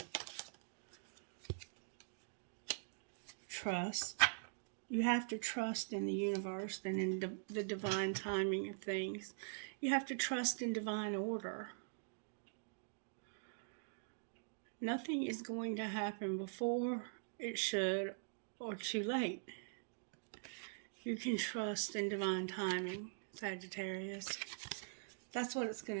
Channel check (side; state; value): left; silent; digital silence